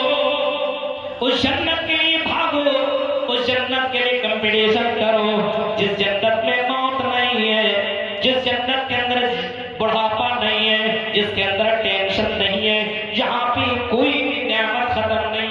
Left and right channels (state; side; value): identical; both; correlation 1.00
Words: اس جنت کے لیے بھاگو، اس جنت کے لیے کمپٹیشن کرو جس جنت میں موت نہیں ہے، جس جنت کے اندر بڑھاپا نہیں ہے، جس کے اندر ٹینشن نہیں ہے، جہاں پہ کوئی بھی نعمت ختم